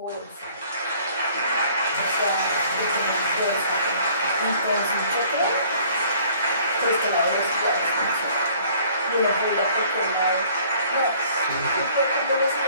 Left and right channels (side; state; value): both; inverted; correlation -0.56